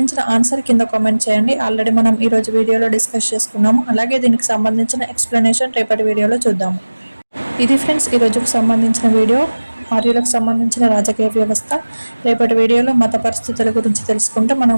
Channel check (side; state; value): both; inverted; correlation -1.00